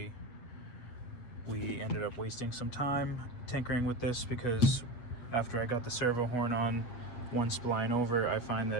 we ended up wasting some time tinkering with this, because after I got the servo horn on one spline over, I find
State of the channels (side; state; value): right; late; 8.3 ms